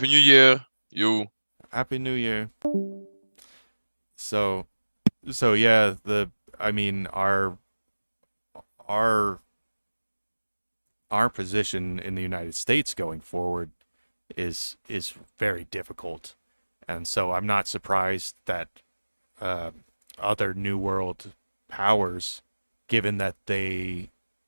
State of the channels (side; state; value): both; inverted; correlation -1.00